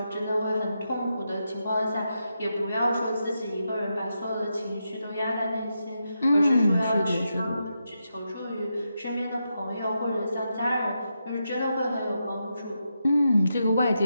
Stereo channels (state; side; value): inverted; both; correlation -0.86